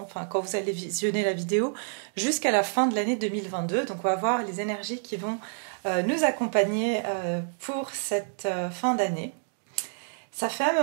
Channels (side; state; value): left; silent; digital silence